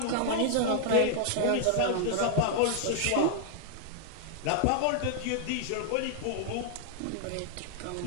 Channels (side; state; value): both; different; correlation -0.01